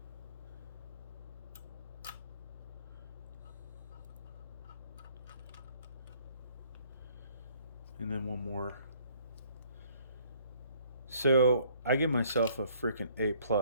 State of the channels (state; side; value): inverted; both; correlation -0.61